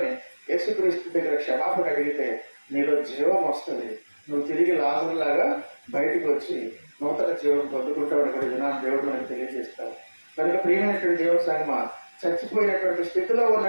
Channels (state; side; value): inverted; both; correlation -1.00